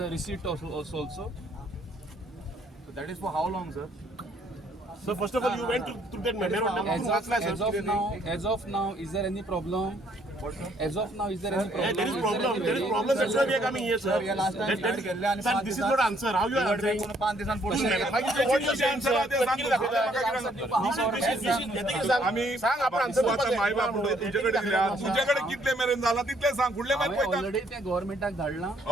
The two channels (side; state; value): both; normal; correlation 0.66